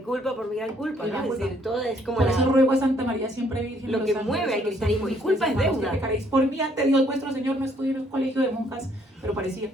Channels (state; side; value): normal; both; correlation 0.66